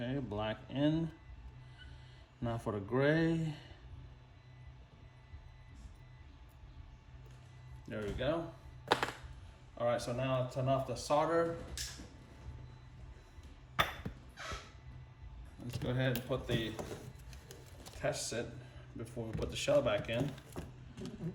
black in. Now for the gray. There we go. All right, so now I'll turn off the solder. Let's go ahead and put the test set before we put the shell back in.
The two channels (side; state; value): both; identical; correlation 1.00